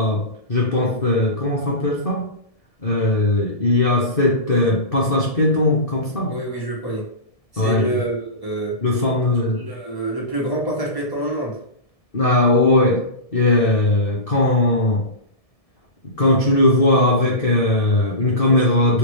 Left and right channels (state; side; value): late; right; 1.7 ms